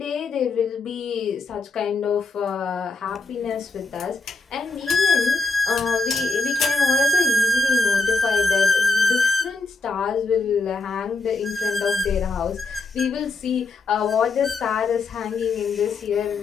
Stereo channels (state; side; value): quieter; right; 3.9 dB